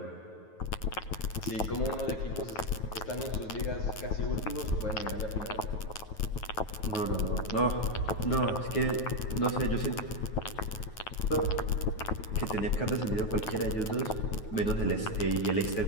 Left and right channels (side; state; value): right; late; 9.3 ms